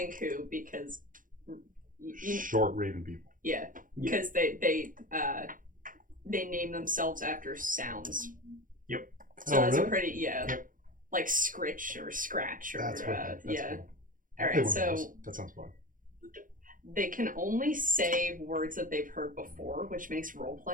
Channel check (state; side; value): late; left; 0.39 ms